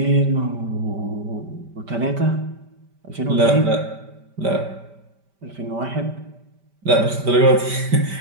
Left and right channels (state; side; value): late; left; 5.1 ms